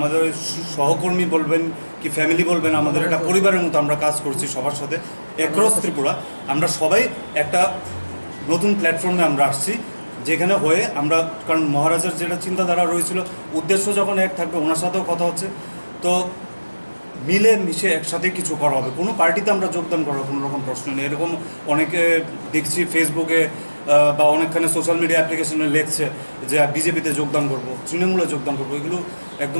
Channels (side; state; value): both; inverted; correlation -1.00